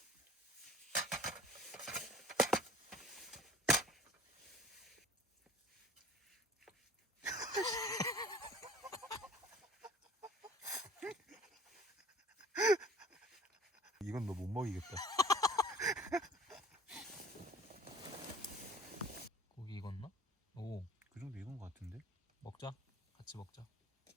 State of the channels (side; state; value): both; normal; correlation 0.47